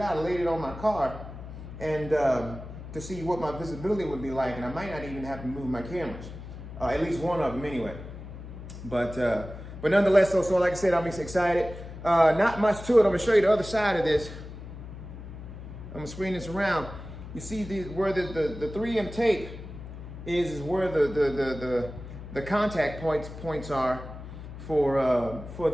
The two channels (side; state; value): left; noise; hum, 12 dB below the sound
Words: out. I laid it on my car, and to see what my visibility would be like. And I might not even have to move my cameras. At least one of them anyway. But nonetheless, so like I said, I'm excited. Not much to it. I'm gonna show you the other side of this. I'm gonna screen this around. You see where the 3M tape is where the contact points are for